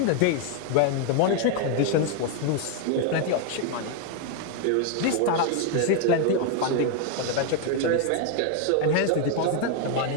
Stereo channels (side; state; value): both; different; correlation 0.01